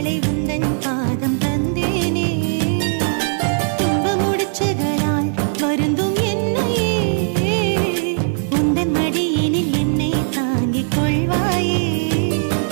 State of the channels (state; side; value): silent; left; digital silence